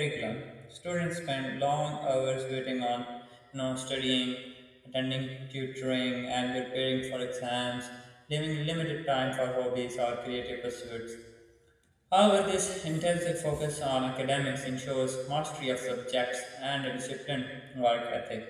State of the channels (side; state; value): both; identical; correlation 1.00